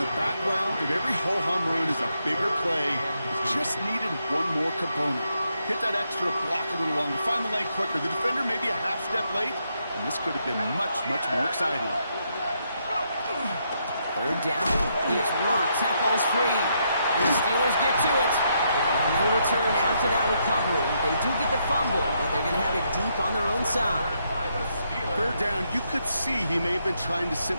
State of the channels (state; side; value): inverted; both; correlation -0.77